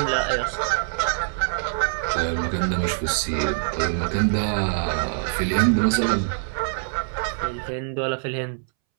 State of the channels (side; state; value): left; silent; 63 dB below the other